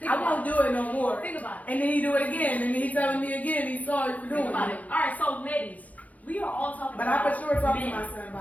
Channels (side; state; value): right; late; 0.074 ms